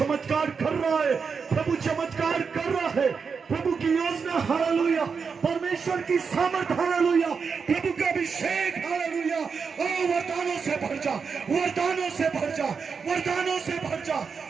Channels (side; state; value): left; quieter; 5.6 dB